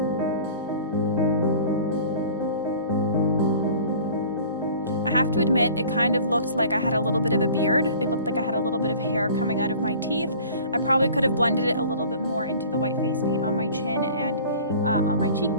I have to admit, it kind of looked like I had a little bit of a beard. It looked like I had a little bit of hair coming out of my teeth. I probably could have blended it a little bit more into the white face paint on my chin and on my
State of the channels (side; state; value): both; inverted; correlation -0.46